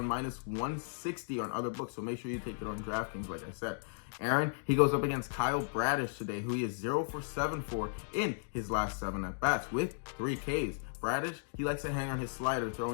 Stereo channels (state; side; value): silent; right; digital silence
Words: minus 160 on other books, so make sure you take it on DraftKings, like I said. Aaron, he goes up against Kyle Bradish today, who he is 0 for 7 for in his last 7 at-bats with 3 Ks. Bradish, he likes to hang on his slider,